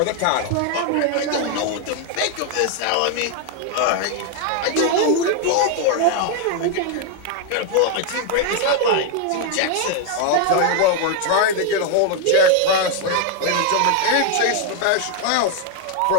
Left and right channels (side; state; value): both; different; correlation 0.00